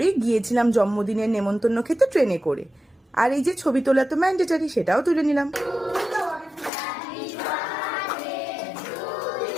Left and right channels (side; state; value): right; drops out; at 6.7 s